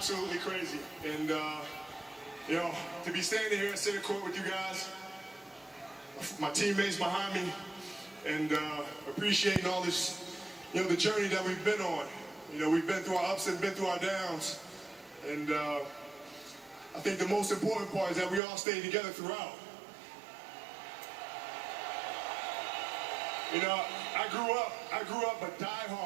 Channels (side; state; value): left; drops out; at 18.4 s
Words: crazy. And, you know, to be standing here at center court with you guys, my teammates behind me, and appreciating all this, you know, the journey that we've been on. You know, we've been through our ups and been through our downs. And, I think the most important part is that we all stayed together throughout. You know, I grew up a